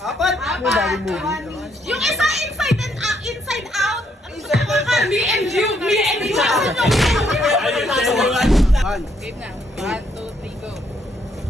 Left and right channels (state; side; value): normal; both; correlation 0.72